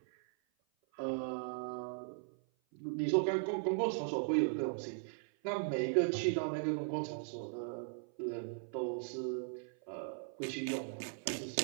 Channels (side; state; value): left; silent; 52 dB below the other